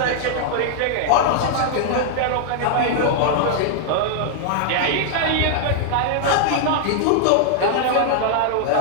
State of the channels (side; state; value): both; different; correlation -0.01